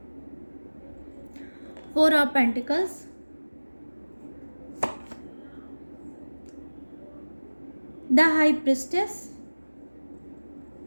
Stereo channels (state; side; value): inverted; both; correlation -1.00